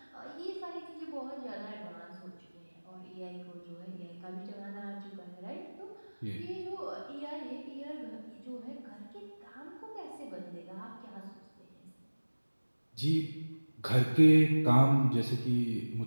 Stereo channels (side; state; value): both; inverted; correlation -1.00